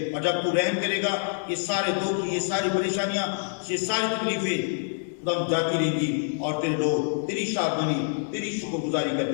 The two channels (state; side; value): silent; right; digital silence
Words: اور جب تو رحم کرے گا یہ سارے دکھ، یہ ساری پریشانیاں، یہ ساری تکلیفیں خدا جاتی رہیں گی، اور تیرے لوگ تیری شادمانی تیری شکر گزاری